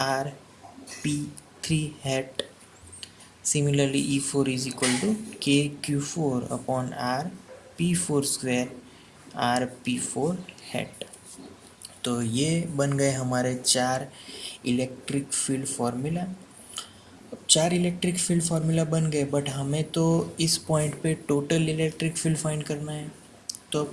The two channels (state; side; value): identical; both; correlation 1.00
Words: RP3 hat. Similarly E4 is equal to K Q4 upon RP4 square RP4 head. तो ये बन गए हमारे चार इलेक्ट्रिक फील्ड फार्मूला। चार इलेक्ट्रिक फील्ड फार्मूला बन गए, but हमें तो इस पॉइंट पे टोटल इलेक्ट्रिक फील्ड फाइंड करना है। तो